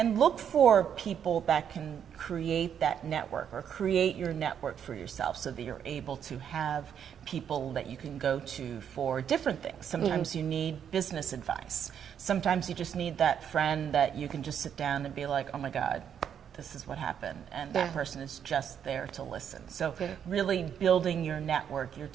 look for people that can create that network or create your network for yourself so that you're able to have people that you can go to for different things. Sometimes you need business advice. Sometimes you just need that friend that you can just sit down and be like, oh my God, this is what happened, and that person is just there to listen. So really building your network, your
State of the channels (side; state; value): left; quieter; 8.5 dB